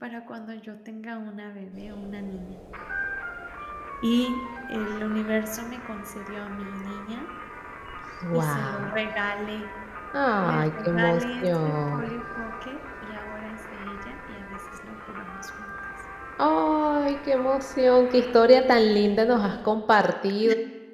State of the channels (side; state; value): both; identical; correlation 1.00